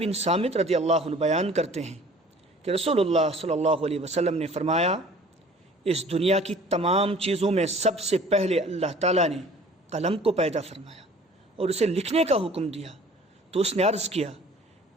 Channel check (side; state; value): both; normal; correlation 0.49